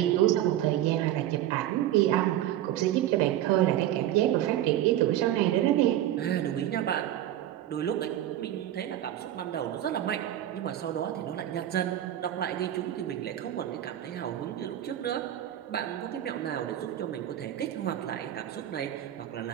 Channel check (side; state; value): left; quieter; 12.5 dB